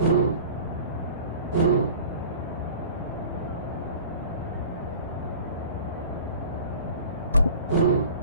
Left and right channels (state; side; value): inverted; both; correlation -0.43